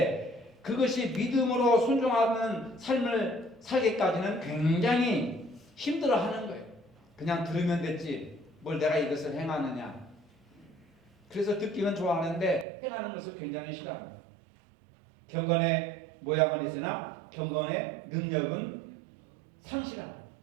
그것이 믿음으로 순종하는 삶을 살기까지는 굉장히 힘들어하는 거예요. 그냥 들으면 됐지 뭘 내가 이것을 행하느냐. 그래서 듣기는 좋아하는데 행하는 것을 굉장히 싫어합니다. 경건의 모양은 있으나 경건의 능력은 상실합니다.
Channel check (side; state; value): left; drops out; at 12.7 s